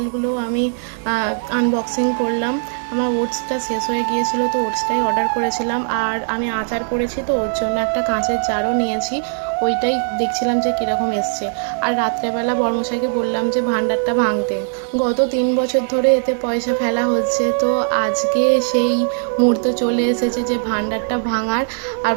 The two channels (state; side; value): silent; left; digital silence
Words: আমি আনবক্সিং করলাম। আমার ওটসটা শেষ হয়ে গিয়েছিলো, তো ওটসটাই অর্ডার করেছিলাম। আর আমি আচার করেছি, তো ওর জন্য একটা কাঁচের জারও নিয়েছি, ওইটাই দেখছিলাম যে কীরকম এসছে। আর রাত্রেবেলা বড়মশাইকে বললাম যে ভাণ্ডারটা ভাঙতে। গত 3 বছর ধরে এতে পয়সা ফেলা হচ্ছে, তো আজকে সেই মুহূর্ত চলে এসেছে যে ভাণ্ডারটা ভাঙার। আর